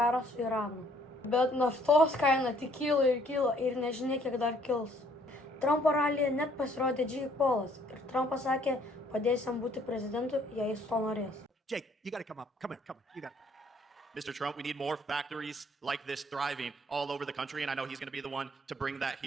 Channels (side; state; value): both; normal; correlation 0.62